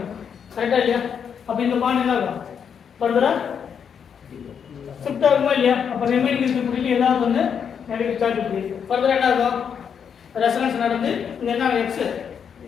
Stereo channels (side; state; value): right; quieter; 7.4 dB